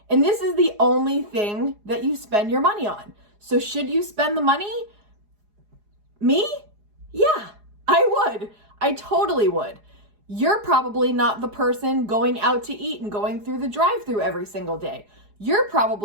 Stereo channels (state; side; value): late; left; 4.8 ms